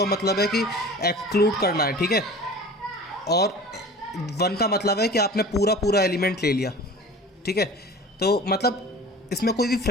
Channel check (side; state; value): both; normal; correlation 0.40